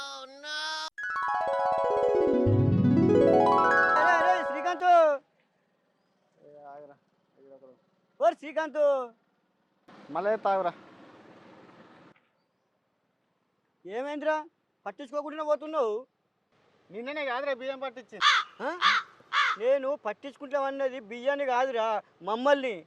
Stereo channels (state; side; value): identical; both; correlation 1.00